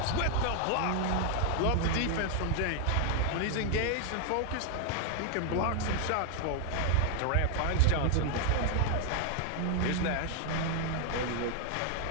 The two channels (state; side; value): different; both; correlation 0.00